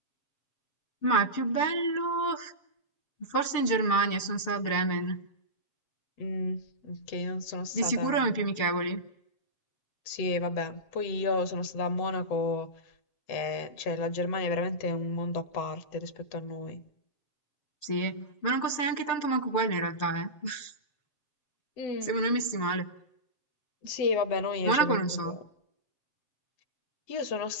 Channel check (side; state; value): right; late; 7.4 ms